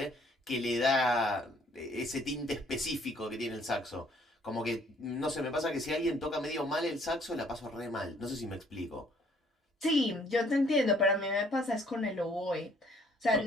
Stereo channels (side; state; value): both; normal; correlation 0.61